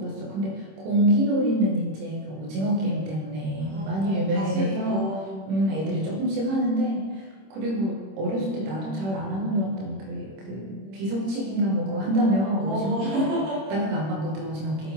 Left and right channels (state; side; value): late; left; 26 ms